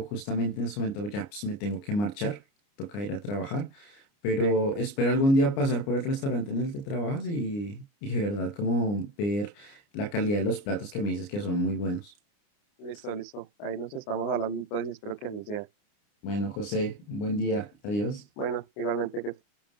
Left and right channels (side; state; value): right; late; 29 ms